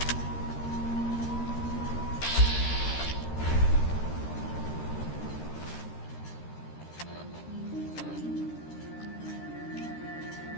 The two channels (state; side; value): late; right; 13 ms